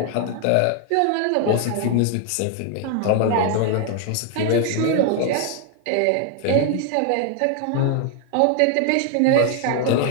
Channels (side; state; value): both; different; correlation 0.00